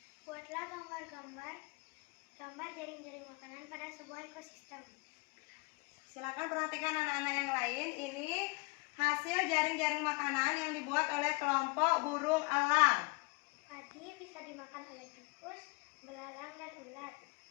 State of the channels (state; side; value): quieter; right; 28.6 dB